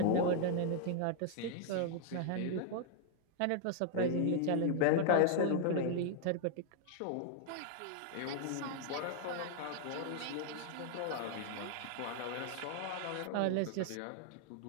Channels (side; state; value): both; different; correlation 0.00